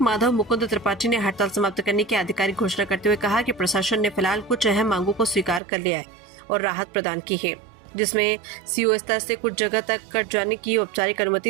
माधव मुकुंद त्रिपाठी ने हड़ताल समाप्त करने की आधिकारिक घोषणा करते हुए कहा कि प्रशासन ने फिलहाल कुछ अहम मांगों को स्वीकार कर लिया है और राहत प्रदान की है, जिसमें सीओ स्तर से कुछ जगह तक कट जाने की औपचारिक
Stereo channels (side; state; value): left; drops out; at 5.6 s